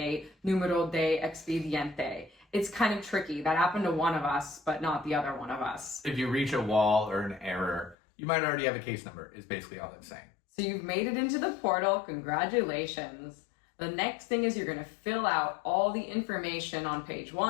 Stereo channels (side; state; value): right; drops out; at 8.0 s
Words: numero de expediente. It's kind of tricky. That happened to one of us, but not the other one of us. If you reach a wall or an error, you might already have a case number, is basically all it's saying. So you've made it into the portal. Congratulations. The next thing is you're going to fill out all the information on page